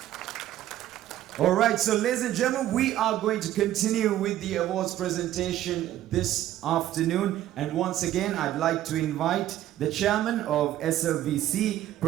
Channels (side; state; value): left; quieter; 13.1 dB